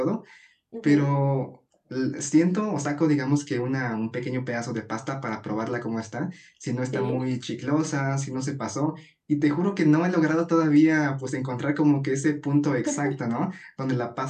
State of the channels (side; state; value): both; identical; correlation 1.00